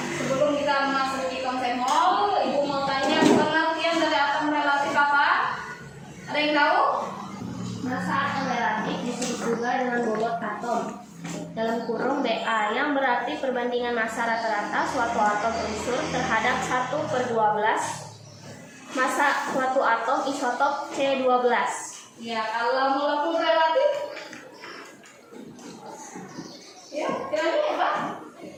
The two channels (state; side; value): identical; both; correlation 1.00